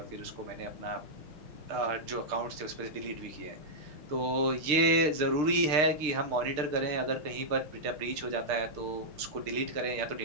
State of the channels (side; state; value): left; late; 6.6 ms